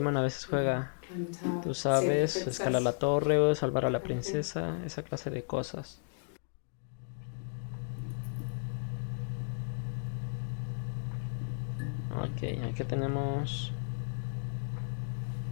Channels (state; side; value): silent; right; digital silence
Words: a veces juega, Climb the tower, tú save the sabes, princess. escalar la torre o salvar a la princesa, esa clase de cosas. Ok, aquí tenemos